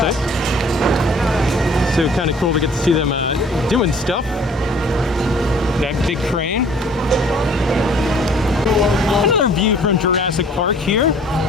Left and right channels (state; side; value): normal; both; correlation 0.54